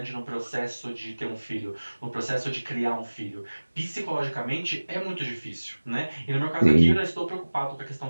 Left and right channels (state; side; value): inverted; both; correlation -1.00